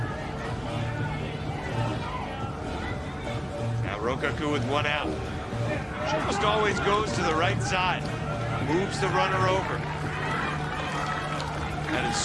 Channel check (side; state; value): both; identical; correlation 1.00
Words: Now Rokaku with 1 out. She almost always goes to the right side, moves the runner over. That is